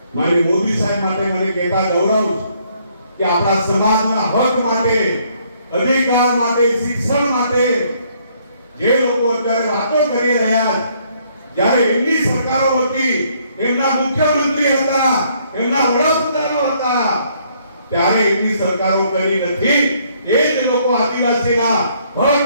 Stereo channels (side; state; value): both; inverted; correlation -0.67